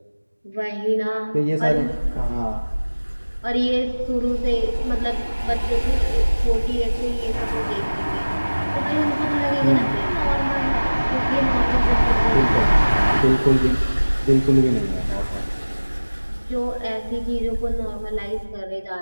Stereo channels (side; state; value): both; inverted; correlation -1.00